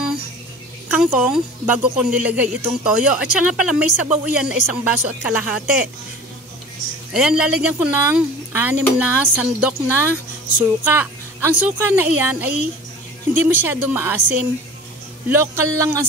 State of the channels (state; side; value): normal; both; correlation 0.40